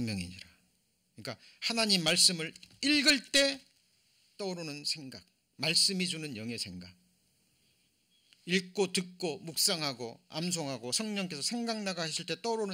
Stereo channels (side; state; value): both; identical; correlation 1.00